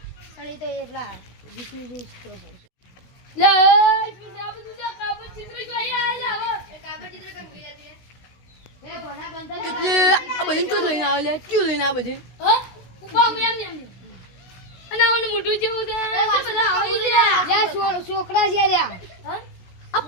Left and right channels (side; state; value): right; late; 16 ms